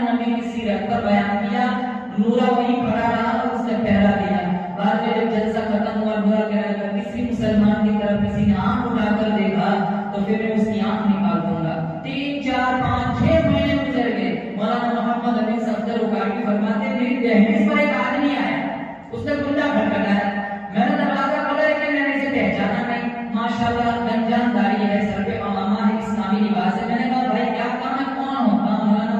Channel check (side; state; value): both; identical; correlation 1.00